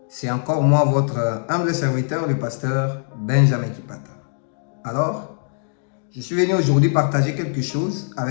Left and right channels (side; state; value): right; silent; digital silence